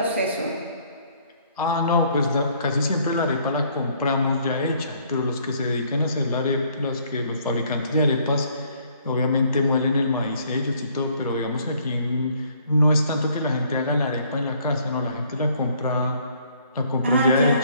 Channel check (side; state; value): both; inverted; correlation -0.63